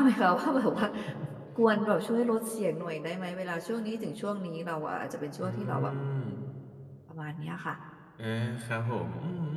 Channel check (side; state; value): both; identical; correlation 1.00